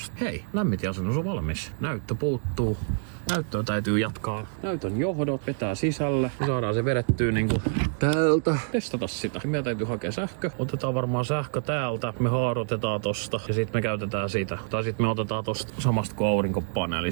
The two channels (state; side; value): silent; left; digital silence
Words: Hei, lämmitinasennus on valmis. Näyttö puuttuu. Näyttöä täytyy jatkaa. Näytön johdot vetää sisälle. Me saadaan se vedettyä täältä. Testata sitä. Meidän täytyy hakea sähkö. Otetaan varmaan sähkö täältä. Me haarotetaan tosta. Ja sitten me käytetään sitä. Tai sitten me otetaan tosta samasta kuin